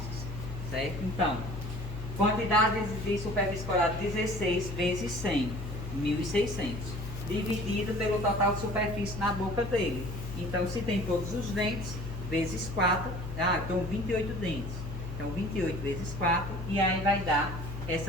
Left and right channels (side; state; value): left; noise; hum, 7 dB below the sound